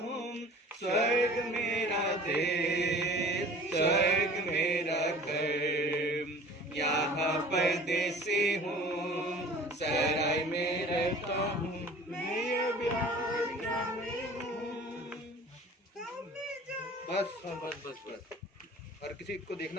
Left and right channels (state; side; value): normal; both; correlation 0.45